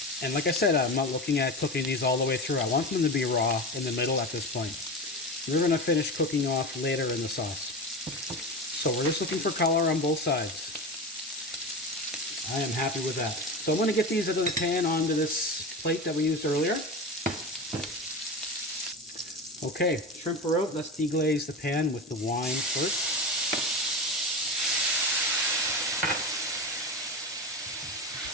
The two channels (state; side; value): normal; both; correlation 0.24